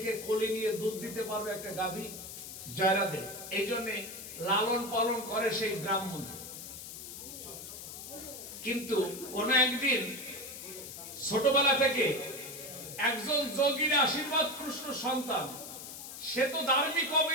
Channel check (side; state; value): left; noise; hiss, 11 dB below the sound